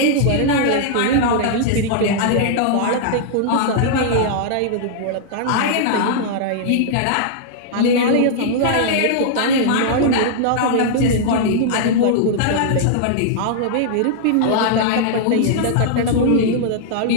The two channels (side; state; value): both; different; correlation -0.01